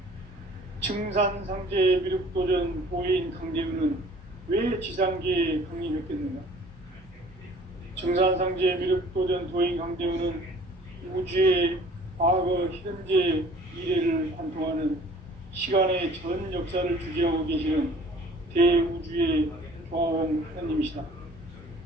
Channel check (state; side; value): normal; both; correlation 0.51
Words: 증산상제 미륵도전 보인 강대문은 왜 지상계에 강림했겠는가? 증산상제 미륵도전 도인 강대문은 우주의 과거, 현재, 미래를 관통하는 시간의 전 역사를 주재하고 계시는 대우주의 조화원 하나님이시다.